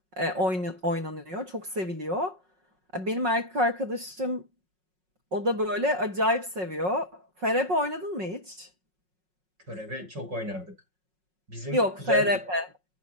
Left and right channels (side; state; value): left; late; 5.4 ms